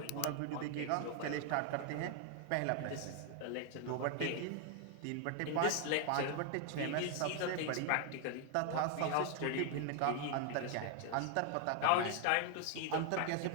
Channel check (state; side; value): different; both; correlation 0.00